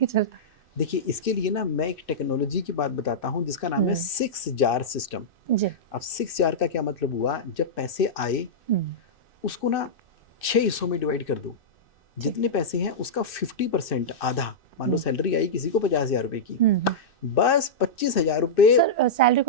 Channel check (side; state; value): right; late; 2.6 ms